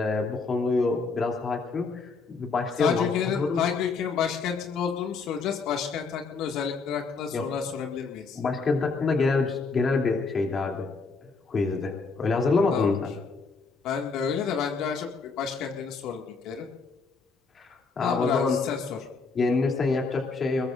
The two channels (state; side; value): quieter; right; 4.5 dB